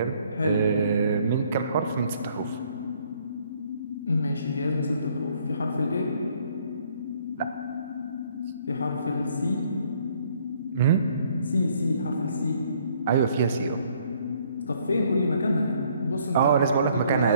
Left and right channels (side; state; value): both; inverted; correlation -0.64